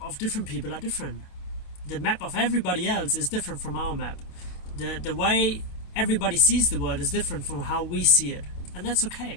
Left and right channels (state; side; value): late; right; 28 ms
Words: of different people are different. The map of everybody else is different from our map. The way everybody sees the world is different from how we see it, and that's